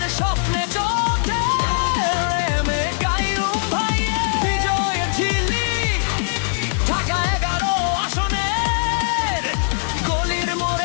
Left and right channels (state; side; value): silent; right; digital silence